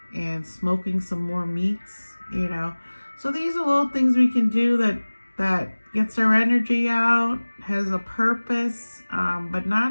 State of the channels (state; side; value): inverted; both; correlation -1.00